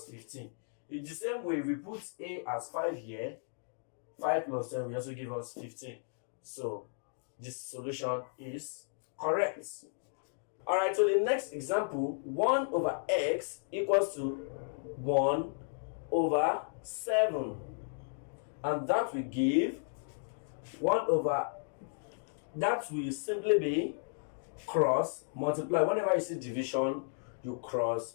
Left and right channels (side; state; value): right; silent; digital silence